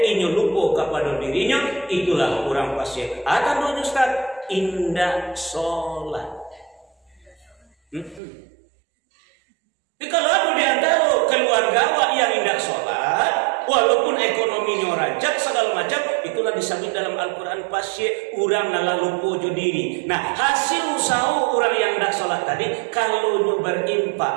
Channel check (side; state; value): left; drops out; at 8.2 s